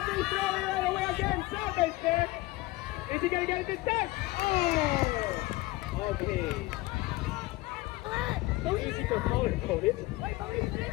throw it all the way again. Selva's there. Is he gonna get it this time? Oh! Okay. So easy for color coded.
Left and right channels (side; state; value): right; quieter; 19.9 dB